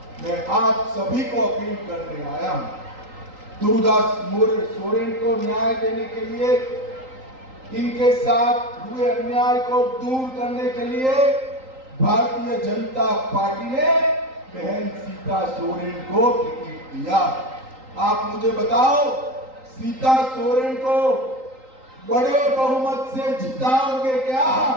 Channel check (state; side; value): late; left; 3.8 ms